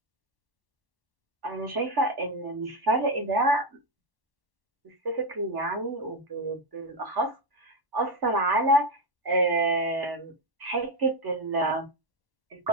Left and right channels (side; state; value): left; late; 1.1 ms